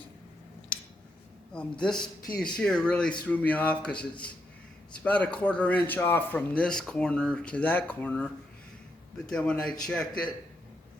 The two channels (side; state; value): both; normal; correlation 0.81